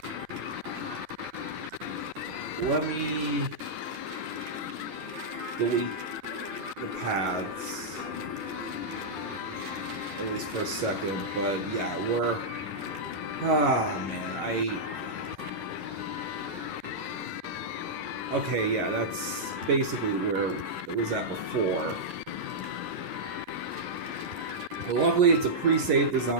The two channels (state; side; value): late; left; 11 ms